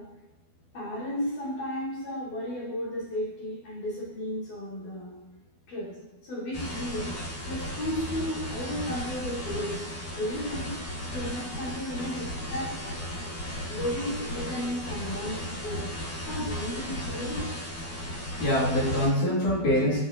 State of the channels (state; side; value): late; right; 12 ms